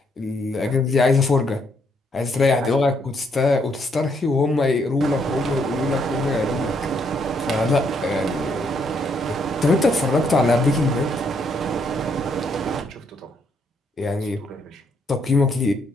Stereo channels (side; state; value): both; normal; correlation 0.72